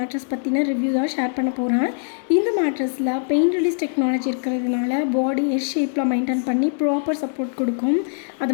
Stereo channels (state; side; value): silent; right; digital silence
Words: பற்றின ரிவ்யூ தான் ஷேர் பண்ண போகிறேன். இந்த மேட்ரஸில் பெயின் ரிலீஸ் டெக்னாலஜி இருக்கிறதுனால பாடி எஸ் ஷேப்பில் மெயின்டைன் பண்ணி ப்ராப்பர் சப்போர்ட் கொடுக்கும். அது